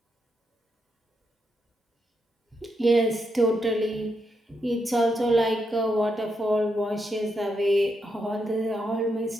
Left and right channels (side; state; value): both; normal; correlation 0.82